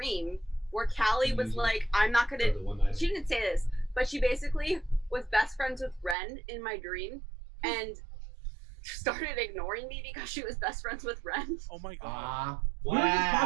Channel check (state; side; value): drops out; left; at 6.2 s